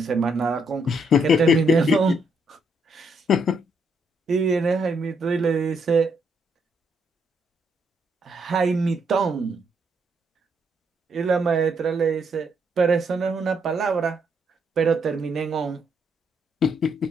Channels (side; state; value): both; normal; correlation 0.74